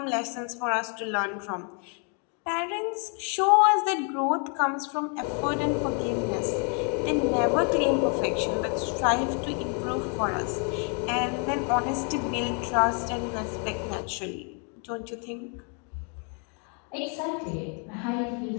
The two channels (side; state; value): right; quieter; 38.6 dB